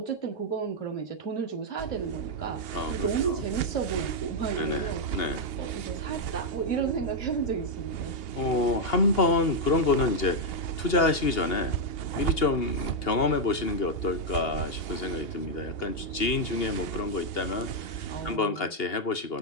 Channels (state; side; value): late; right; 2.8 ms